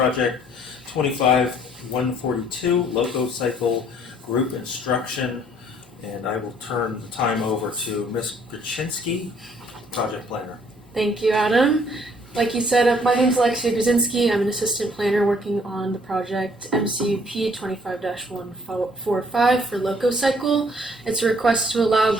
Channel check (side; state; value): both; normal; correlation 0.61